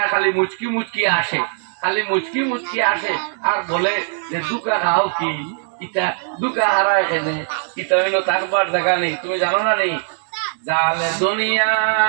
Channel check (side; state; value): left; silent; digital silence